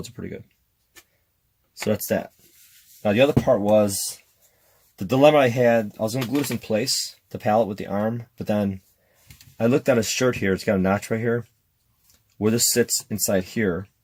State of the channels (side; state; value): both; identical; correlation 1.00